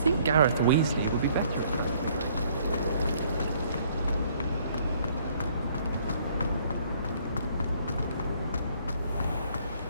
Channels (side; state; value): both; inverted; correlation -0.62